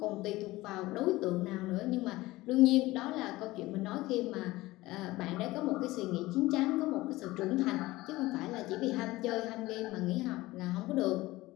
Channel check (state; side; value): quieter; right; 18.9 dB